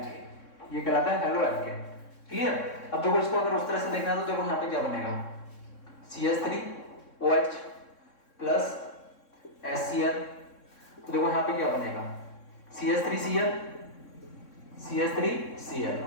ये कहलाता है हेलो एल्केन। क्लियर? अब देखो, इसको अगर उस तरह से देखना है तो देखो यहाँ पे क्या बनेगा? CH3OH plus HCl। तो देखो यहाँ पे क्या बनेगा? CH3Cl,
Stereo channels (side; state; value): right; late; 3.6 ms